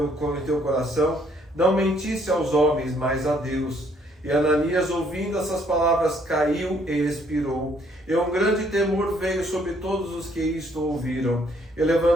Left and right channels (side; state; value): both; normal; correlation 0.66